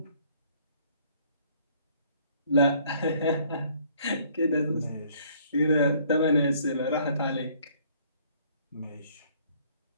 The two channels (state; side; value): inverted; both; correlation -0.60